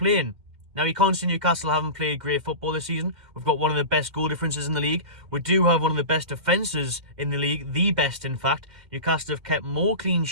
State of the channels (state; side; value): late; left; 2.1 ms